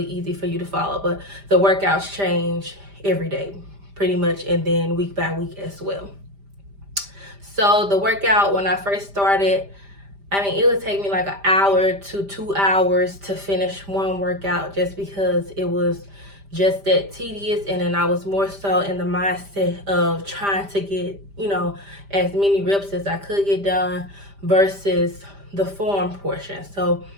easy for you to follow, but the workouts change every day pretty much, and then week by week as well. So the workout, when I first started, I mean, it would take me like an hour to 2 hours to finish one workout, just because it was just that tedious. And then I was more so in the mindset of trying to get, you know, as many reps as I could get done versus the form portion. So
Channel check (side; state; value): left; late; 5.0 ms